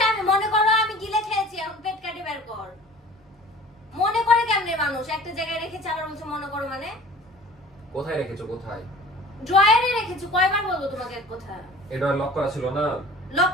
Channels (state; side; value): normal; both; correlation 0.45